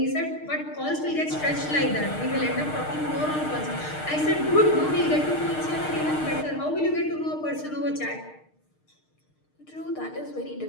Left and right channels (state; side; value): late; right; 6.5 ms